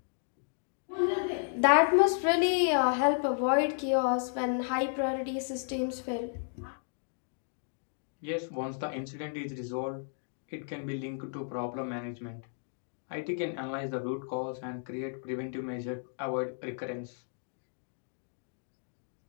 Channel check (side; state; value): right; silent; digital silence